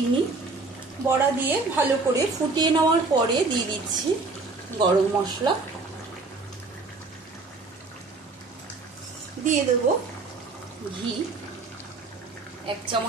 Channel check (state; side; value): quieter; left; 3.8 dB